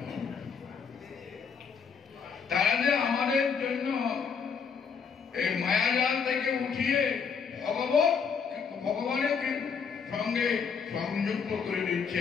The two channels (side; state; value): right; quieter; 6.1 dB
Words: হবে। তারা যে আমাদের জন্য এই মায়াজাল থেকে উঠিয়ে ভগবানের সঙ্গে সংযুক্ত করে